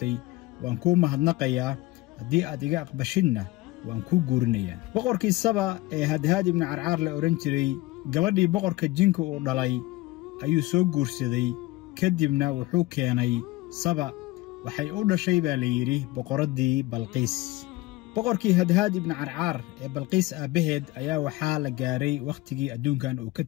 waan kuu mahadnaqayaa, haddii aad iga aqbashidna waan kuu guurinayaa. boqorkii Saba ee Hadhaad ibn Carcar la oran jiray, gabadhii boqorka jinka uu dhalay ayuu soo guursaday. kadibna wuxuu keenay Saba. waxay u dhashay baa la yidhi boqoradii Balqiis. boqorkii Hadhaad ibn Carcar ee Balqiis aabaheed ayaa waxaa la gaaray wakhtigii adduunkan uu ka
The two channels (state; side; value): quieter; right; 19.5 dB